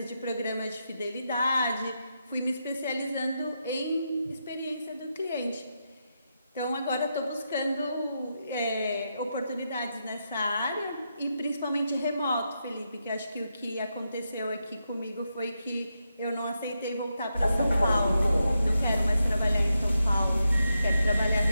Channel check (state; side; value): inverted; both; correlation -0.85